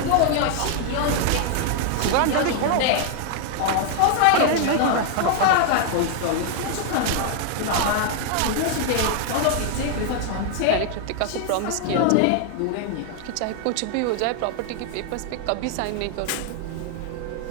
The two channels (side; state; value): both; different; correlation 0.00